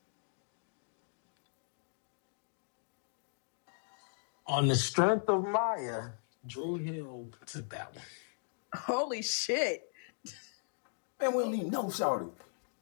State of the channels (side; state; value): right; silent; digital silence